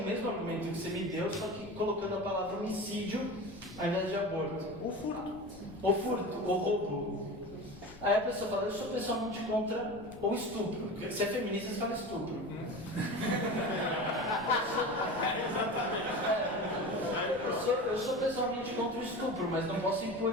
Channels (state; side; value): noise; left; rumble, 20 dB below the sound